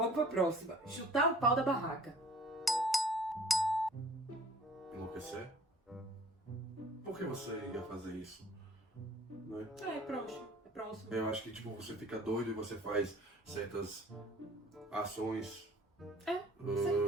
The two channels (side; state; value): both; normal; correlation 0.51